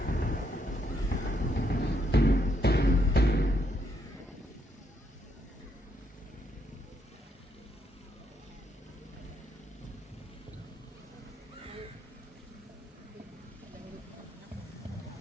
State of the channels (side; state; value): both; normal; correlation 0.76